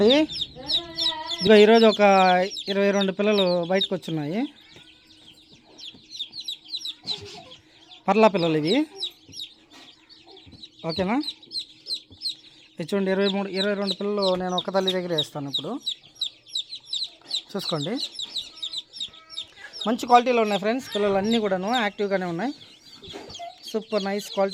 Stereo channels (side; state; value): both; identical; correlation 1.00